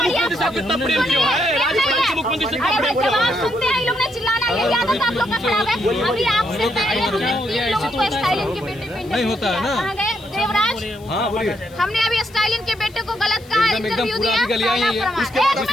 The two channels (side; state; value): left; noise; hiss, 26 dB below the sound